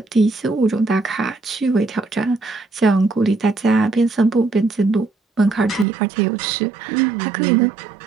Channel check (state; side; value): drops out; left; at 5.9 s